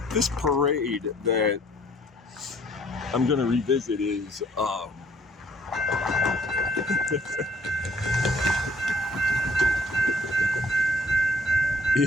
This parade that I'm going to revisit is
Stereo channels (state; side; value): normal; both; correlation 0.59